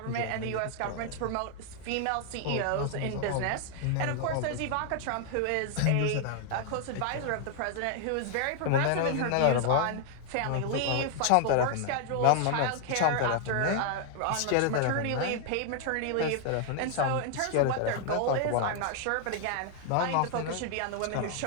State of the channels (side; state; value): both; different; correlation 0.00